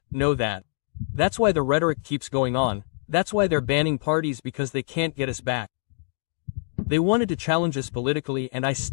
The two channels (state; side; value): silent; right; 62 dB below the other